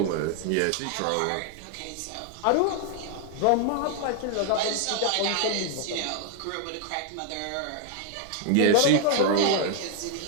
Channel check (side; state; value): both; different; correlation 0.00